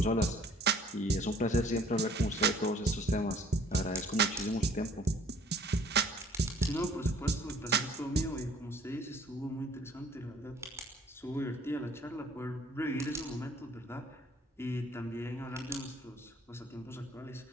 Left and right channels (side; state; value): both; normal; correlation 0.55